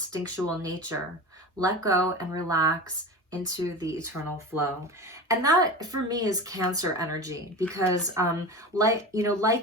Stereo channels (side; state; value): both; normal; correlation 0.29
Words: nature. Let go and relax into the eternal flow. And that for me is Cancer energy, because like